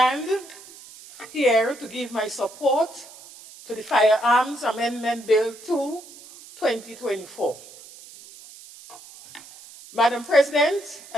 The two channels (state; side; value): noise; right; hiss, 19 dB below the sound